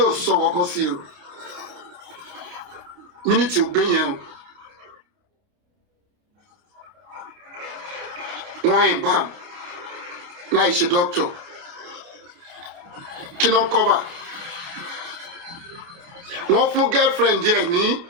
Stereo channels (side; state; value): left; late; 29 ms